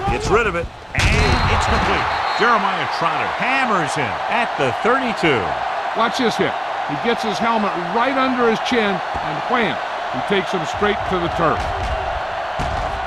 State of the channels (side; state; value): both; identical; correlation 1.00